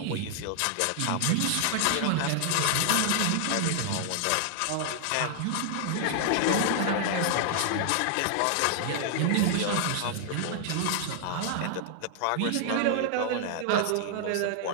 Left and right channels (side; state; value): both; different; correlation 0.00